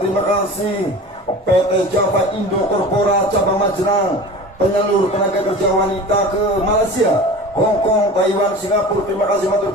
terima kasih PT Java Indo Corpora cabang Majenang, penyalur tenaga kerja wanita ke Malaysia, Hong Kong, Taiwan, Singapura. Terima kasih, matur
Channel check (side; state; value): both; normal; correlation 0.36